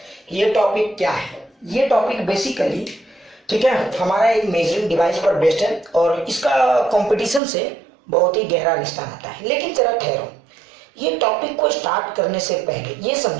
ये टॉपिक क्या है। ये टॉपिक बेसिकली ठीक है हमारा एक मेजरिंग डिवाइस पर बेस्ड है और इसका कंपटीशन से बहुत ही गहरा रिश्ता नाता है। लेकिन जरा ठहरो, ये टॉपिक को स्टार्ट करने से पहले ये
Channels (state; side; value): drops out; left; at 7.4 s